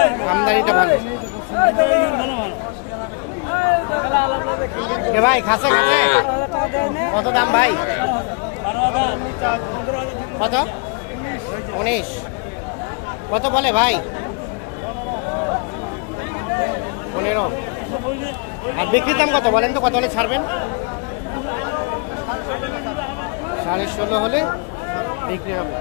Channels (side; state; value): right; quieter; 35.7 dB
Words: আমদানিটা ভালো। ভাই খাসে খাসে কত দাম ভাই? কত? 19। কত বলে ভাই? 15। আর বিক্রির দাম কত বলেন তো? কত হলে ছাড়বেন? 16.5 হলে বিক্রি হবে।